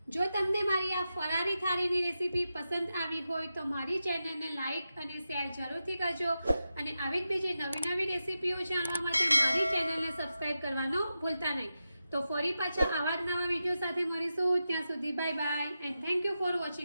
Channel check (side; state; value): both; inverted; correlation -0.90